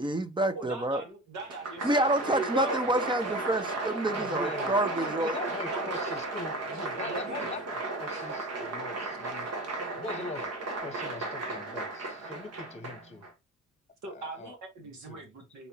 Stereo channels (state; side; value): normal; both; correlation 0.33